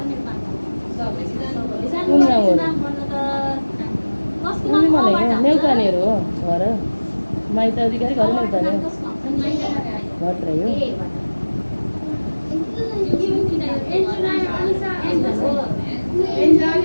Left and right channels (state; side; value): inverted; both; correlation -1.00